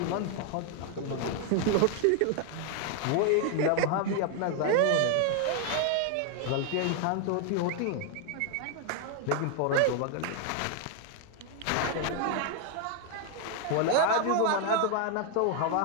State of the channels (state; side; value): different; both; correlation 0.00